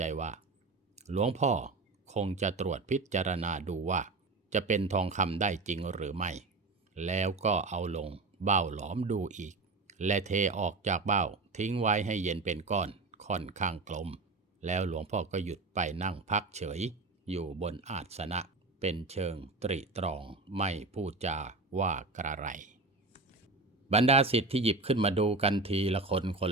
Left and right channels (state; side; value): quieter; left; 3.6 dB